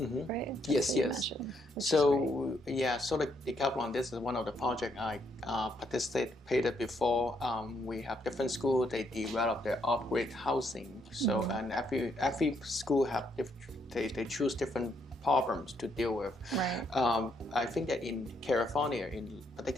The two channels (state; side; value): normal; both; correlation 0.73